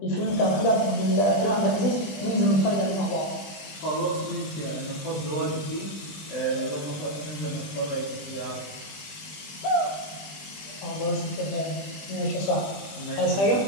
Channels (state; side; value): late; right; 20 ms